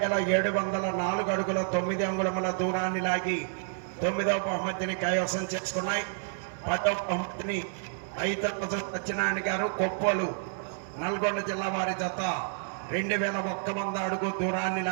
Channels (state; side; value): silent; left; 58 dB below the other